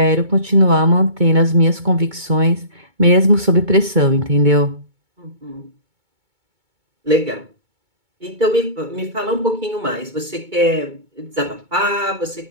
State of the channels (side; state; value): left; late; 2.2 ms